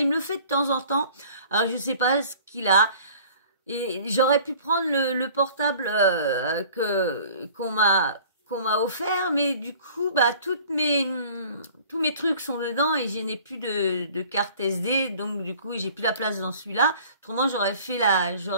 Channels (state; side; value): inverted; both; correlation -0.49